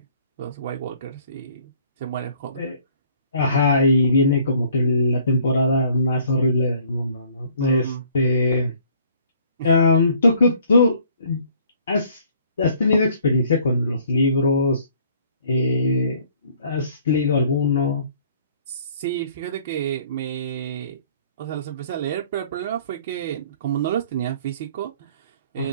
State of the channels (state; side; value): inverted; both; correlation -0.58